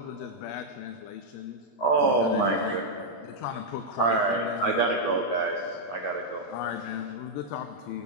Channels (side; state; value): right; late; 21 ms